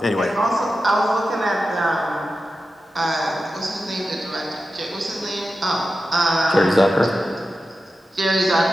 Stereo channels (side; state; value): both; normal; correlation 0.92